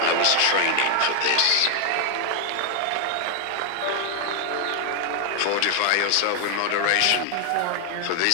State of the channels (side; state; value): both; different; correlation 0.00